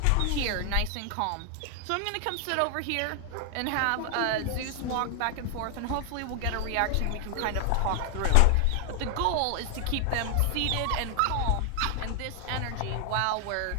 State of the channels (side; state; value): both; different; correlation 0.00